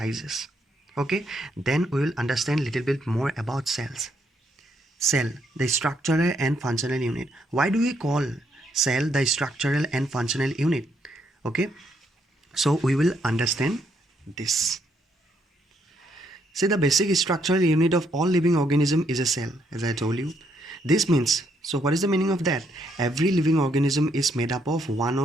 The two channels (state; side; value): normal; both; correlation 0.74